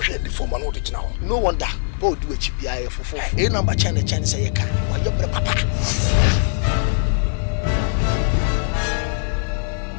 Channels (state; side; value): silent; right; digital silence